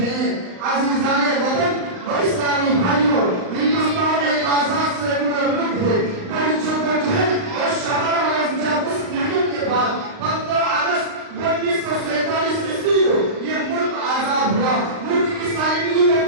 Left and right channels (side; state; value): left; late; 38 ms